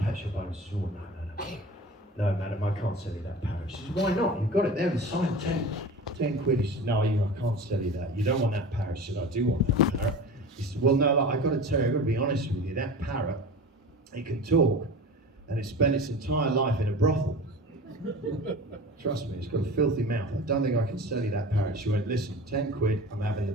pet shop owner says, "Oh, no, madam, I can't sell you that parrot." She says, "Why not? You've got it there inside, 10 quid. He said, "No, I can't sell you that. You don't want that parrot." She said, "I do want that parrot." He said, "Well, no, I've got to tell you, I've got to be honest with you, that parrot, it can talk, and it spent its entire life in a brothel. Trust me, it's got a filthy mouth. I don't think I can sell you that parrot." She went, "Listen, 10 quid, I'm having the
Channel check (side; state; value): both; normal; correlation 0.35